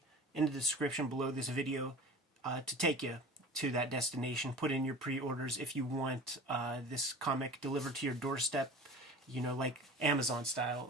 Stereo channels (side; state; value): both; normal; correlation 0.38